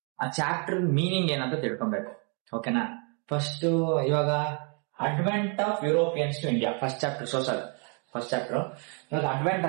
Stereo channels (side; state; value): left; quieter; 38.0 dB